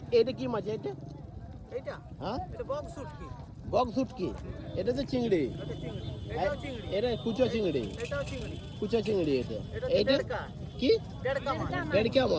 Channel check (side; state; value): both; identical; correlation 1.00